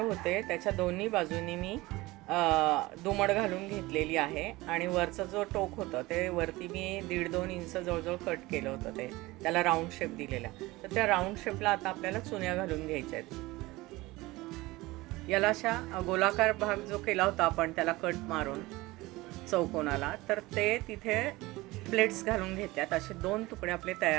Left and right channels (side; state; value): left; quieter; 20.3 dB